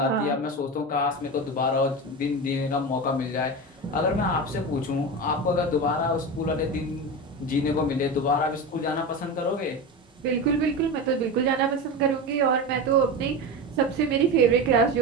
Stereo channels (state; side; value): normal; both; correlation 0.23